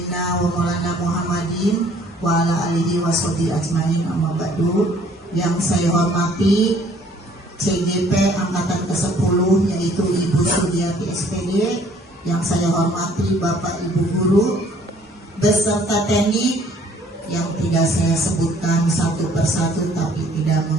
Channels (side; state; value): both; normal; correlation 0.59